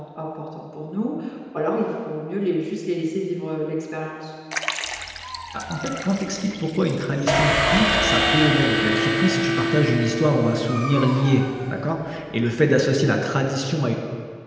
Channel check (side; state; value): both; identical; correlation 1.00